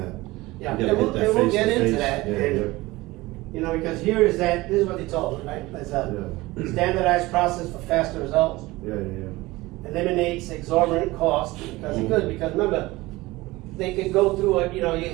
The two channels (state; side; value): quieter; left; 20.1 dB